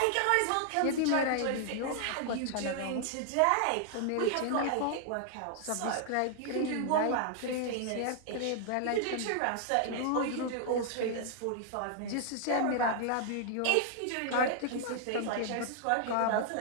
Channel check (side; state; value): both; different; correlation -0.01